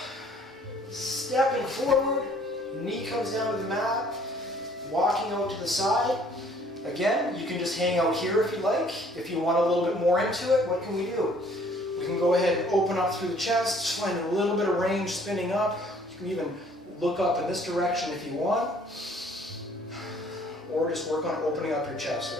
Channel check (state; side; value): normal; both; correlation 0.58